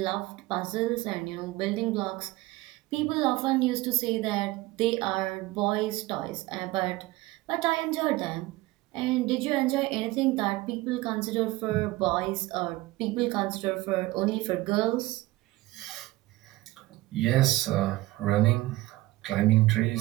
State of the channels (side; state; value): left; quieter; 18.8 dB